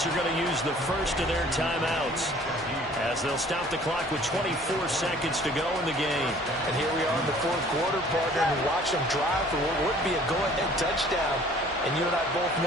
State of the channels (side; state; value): both; normal; correlation 0.53